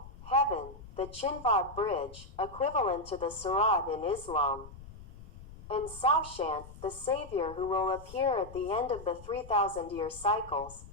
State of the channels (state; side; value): noise; left; rumble, 17 dB below the sound